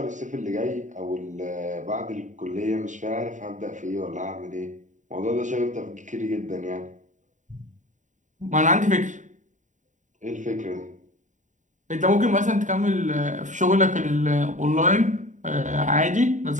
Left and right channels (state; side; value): late; left; 0.36 ms